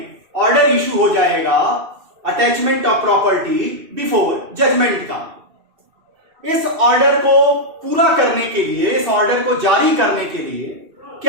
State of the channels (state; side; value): late; left; 2.6 ms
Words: ऑर्डर इशू हो जाएगा attachment of property before judgment का। इस ऑर्डर को पूरा करने के लिए, इस ऑर्डर को जारी करने के लिए